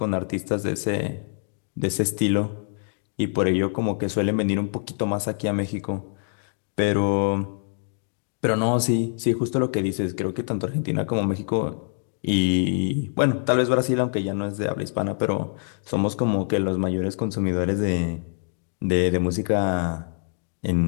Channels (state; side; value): silent; right; digital silence